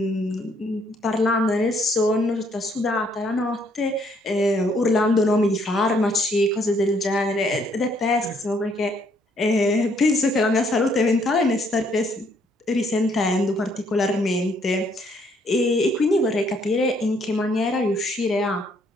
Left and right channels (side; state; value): both; normal; correlation 0.68